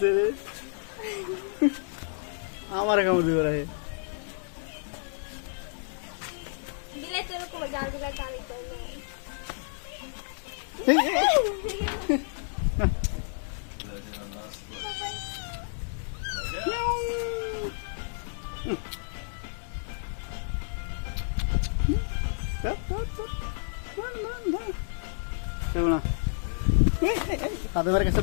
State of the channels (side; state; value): right; silent; digital silence